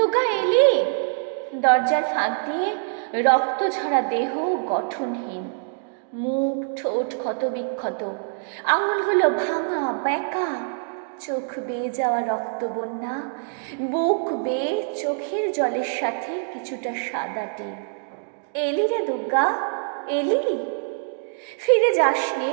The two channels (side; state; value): left; silent; digital silence